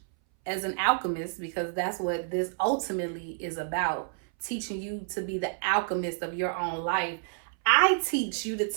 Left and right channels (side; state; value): left; silent; 58 dB below the other